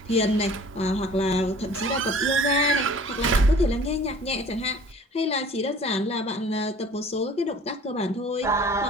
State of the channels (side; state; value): both; normal; correlation 0.48